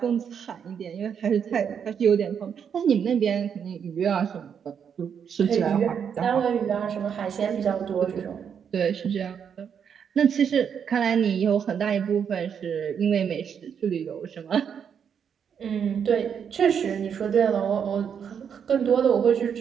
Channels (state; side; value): quieter; left; 7.6 dB